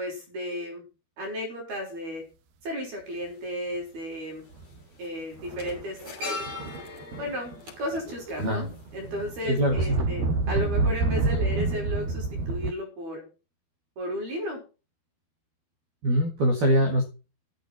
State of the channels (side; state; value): left; late; 12 ms